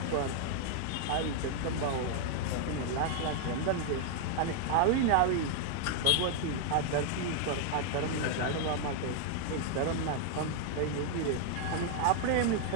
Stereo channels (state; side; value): different; both; correlation 0.00